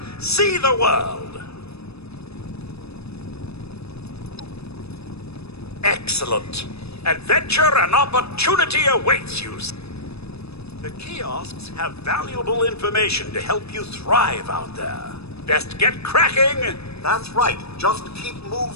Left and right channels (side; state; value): right; late; 0.79 ms